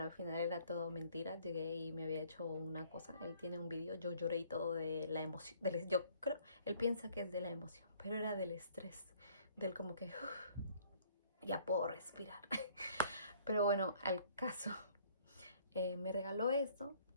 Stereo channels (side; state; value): both; inverted; correlation -0.59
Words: al final era todo mentira. Llegué y me había hecho una cosa. Él tiene un vídeo, yo lloré y todo de la emoción. Yo creo, él piensa que es de la emoción, pero era del estrés, del como que ya puedo respirar. Pero bueno, al caso. Me regaló esto